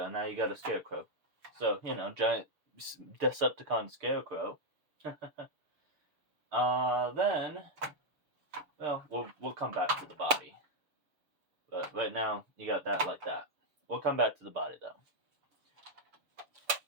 Now you got a scarecrow. So, giant Decepticon scarecrow. Then, well, we'll come back to the body. But right now, you got that like that. We'll come back to the body, though.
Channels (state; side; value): late; left; 6.8 ms